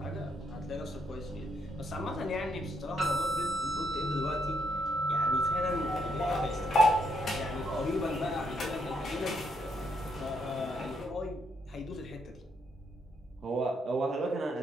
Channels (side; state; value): both; normal; correlation 0.75